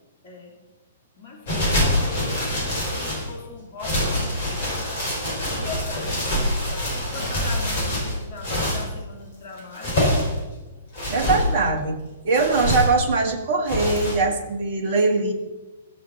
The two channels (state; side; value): inverted; both; correlation -0.44